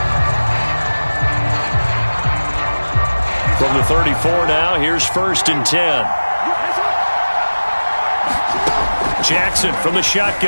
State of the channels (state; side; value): inverted; both; correlation -1.00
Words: From the 34 now, here's 1st and 10. Jackson from the